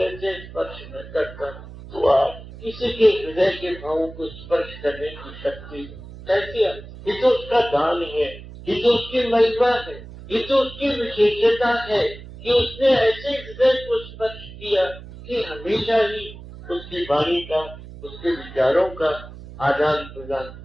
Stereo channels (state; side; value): noise; right; hum, 15 dB below the sound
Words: से स्पर्श न करता, तो आज किसी के हृदय के भावों को स्पर्श करने की शक्ति कैसे आई? ये तो उसका दान है, ये तो उसकी महिमा है, ये तो उसकी विशेषता है कि उसने ऐसे हृदय को स्पर्श किया कि हमेशा ही उसकी वाणी का, उसके विचारों का आदान प्रदान